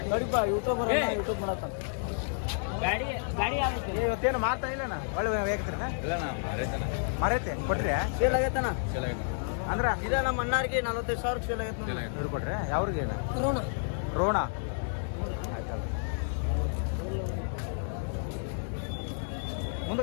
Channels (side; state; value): right; silent; digital silence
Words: ನೋಡಿಪ್ಪ ಯೂಟ್ಯೂಬ್ ಮಾಡತ್ತ. ಇವತ್ತೇನು ಮಾರ್ತಾ ಇಲ್ಲನ? ಒಳ್ಳೆ ಬೇಕತ್ರಿನ? ಮರೈತೆ ಕೊಟ್ರಿ? ಸೇಲ್ ಆಗೈತಣ್ಣ. ಅಂದ್ರ ಇದ ನಮ್ಮ ಅಣ್ಣಾರಿಗೆ 45,000 ಸೇಲ್ ಆಗೈತೆ. ಇವ್ರು ಕೊಟ್ರೆ ಯಾವ್ರಿಗೆ? ರೋಣ ಆಯ್ತಲ್ಲ.